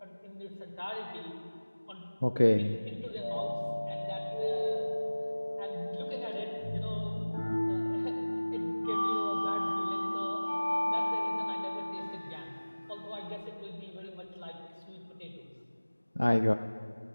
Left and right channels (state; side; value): inverted; both; correlation -1.00